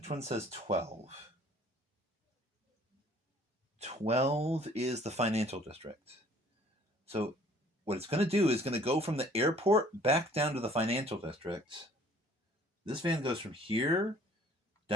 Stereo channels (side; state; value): both; normal; correlation 0.55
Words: one says 12? 12 is the financial district. So what it's going to do is going to go from the airport back down to the financial district. This van goes from here